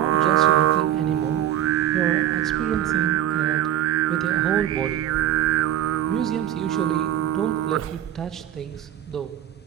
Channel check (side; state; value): left; quieter; 11.5 dB